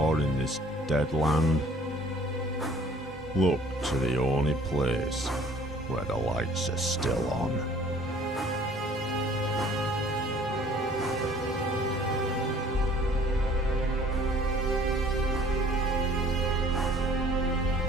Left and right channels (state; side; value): normal; both; correlation 0.53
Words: in this dead land? Look to the only place where the lights are still on.